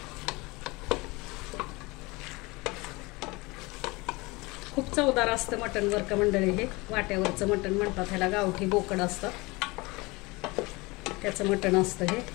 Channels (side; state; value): right; quieter; 24.1 dB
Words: खूप चवदार असतं मटण बरं का मंडळी. हे वाट्यावरचं मटण म्हणतात ह्याला, गावठी बोकड असतात त्याचं मटण असतं हे.